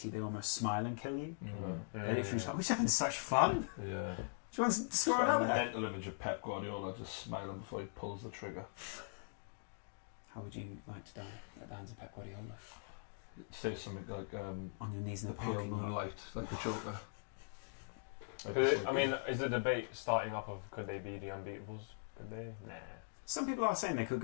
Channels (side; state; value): right; silent; digital silence